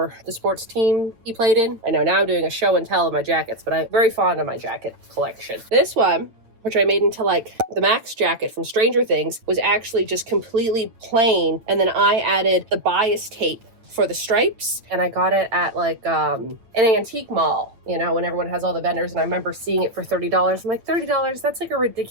the sports team he played in. I know now I'm doing a show and tell of my jackets, but I'm very fond of my jacket collection. This one, which I made into like the Max jacket from Stranger Things, was actually just completely plain, and then I added the bias tape for the stripes, and I got it at like an antique mall, you know, when everyone has all the vendors, and I remember seeing it for $30. I'm like, $30, that's like a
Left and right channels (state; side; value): late; left; 8.9 ms